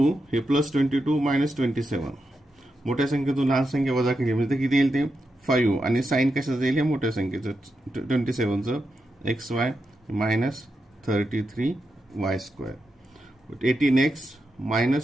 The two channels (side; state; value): both; normal; correlation 0.87